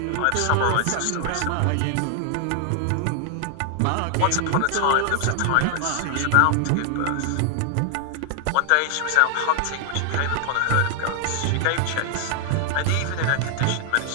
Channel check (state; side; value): different; both; correlation 0.00